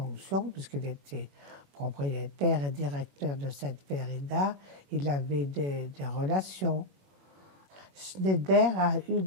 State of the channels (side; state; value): left; late; 21 ms